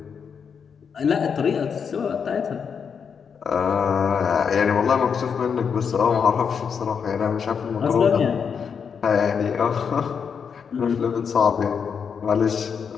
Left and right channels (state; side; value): quieter; right; 6.6 dB